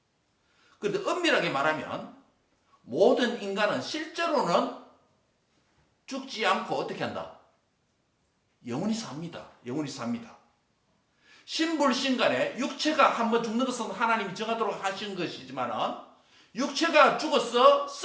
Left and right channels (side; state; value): both; identical; correlation 1.00